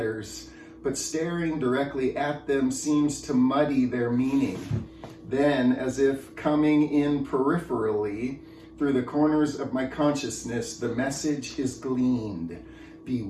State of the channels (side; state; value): both; identical; correlation 1.00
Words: but staring directly at them seems to muddy their meaning. Then, as if coming in peripherally, through the corners of my consciousness, the message is gleaned.